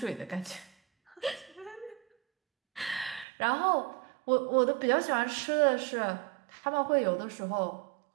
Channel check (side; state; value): left; drops out; at 3.2 s